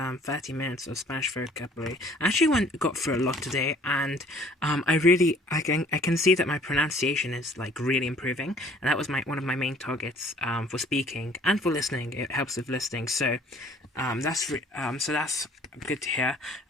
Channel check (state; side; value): normal; both; correlation 0.55